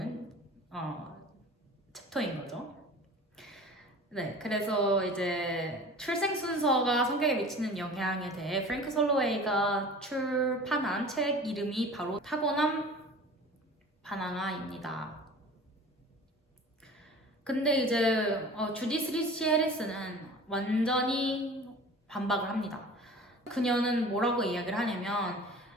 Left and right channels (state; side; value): normal; both; correlation 0.41